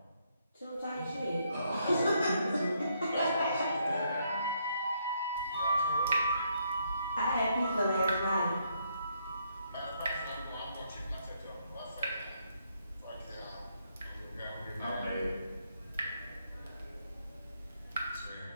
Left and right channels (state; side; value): inverted; both; correlation -0.74